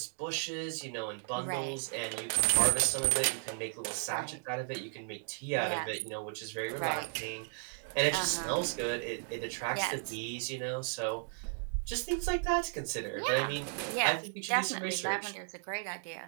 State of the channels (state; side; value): silent; left; 55 dB below the other